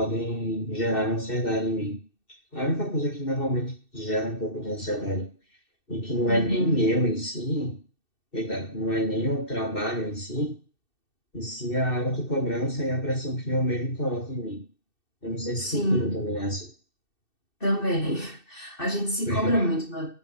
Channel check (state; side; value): late; right; 2.6 ms